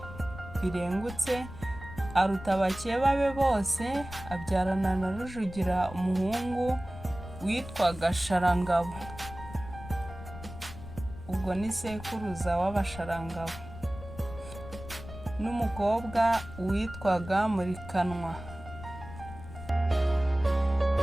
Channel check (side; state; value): left; noise; rumble, 13 dB below the sound